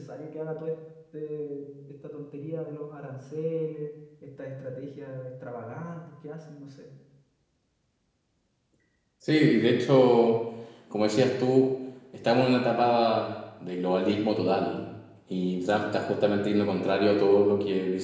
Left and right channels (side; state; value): both; identical; correlation 1.00